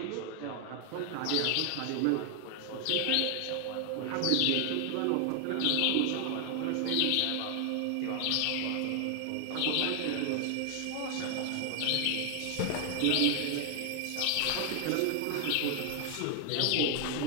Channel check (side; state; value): both; different; correlation 0.00